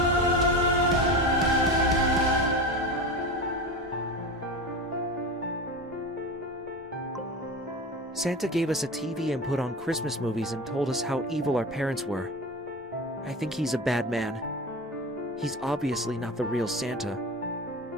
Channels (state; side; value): normal; both; correlation 0.28